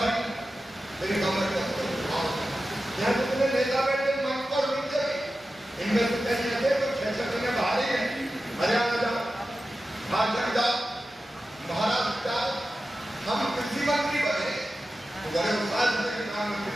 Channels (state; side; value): normal; both; correlation 0.93